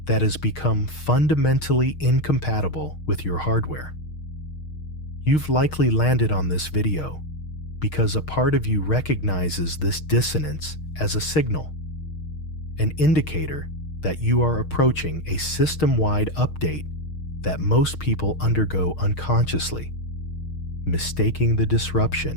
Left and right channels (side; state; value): right; late; 6.4 ms